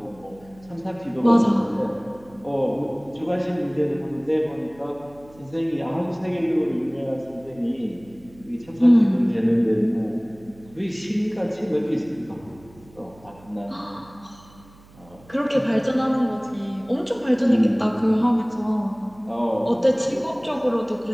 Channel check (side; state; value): right; noise; hum, 24 dB below the sound